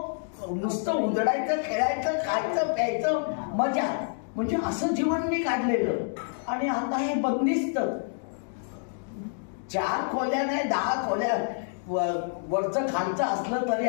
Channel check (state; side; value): silent; right; digital silence